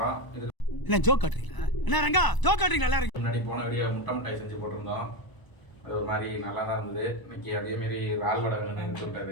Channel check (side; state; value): right; late; 1.0 ms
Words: இது என்ன ஜோக் காட்டுறீங்களா? என்ன ரங்கா ஜோக் காட்டுறீங்களா? எல்லாரும் முன்னாடி போன வீடியோ முட்டை மிட்டாய் செஞ்சு போட்டிருந்தோம். அது ஒரு மாதிரி நல்லா தான் இருந்தது. இன்னைக்கு அதேமாரி இறால் வடை வேணும்னு